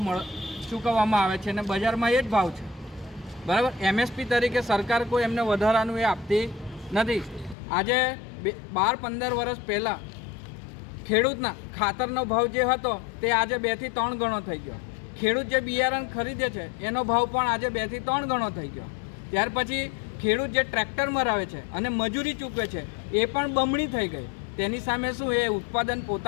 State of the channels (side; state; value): right; drops out; at 7.6 s